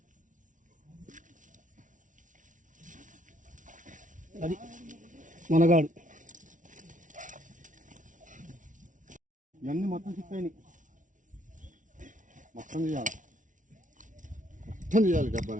అది మనగాడు. ఇవన్నీ మొత్తం చిక్కాయి. మొత్తం తీయాలి, మొత్తం తీయాలి.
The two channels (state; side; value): late; left; 0.37 ms